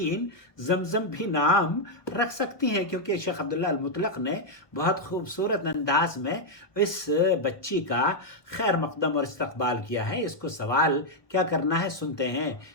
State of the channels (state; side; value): late; right; 1.2 ms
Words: زمزم بھی نام رکھ سکتی ہیں، کیونکہ شیخ عبداللہ المطلق نے بہت خوبصورت انداز میں اس بچی کا خیر مقدم اور استقبال کیا ہے۔ اس کو سوال کیا کرنا ہے سنتے ہیں